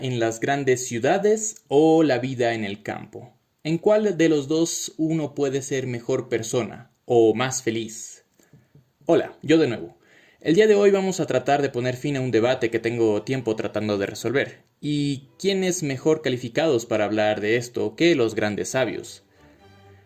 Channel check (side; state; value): both; identical; correlation 1.00